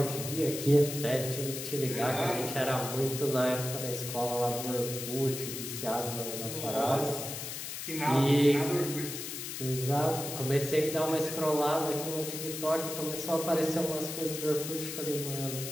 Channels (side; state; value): left; noise; hiss, 6 dB below the sound